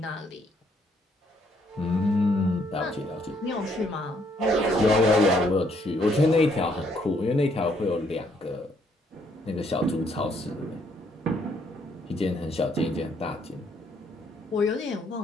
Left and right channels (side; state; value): both; normal; correlation 0.69